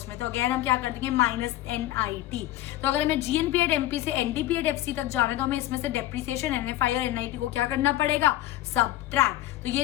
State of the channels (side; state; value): right; quieter; 14.9 dB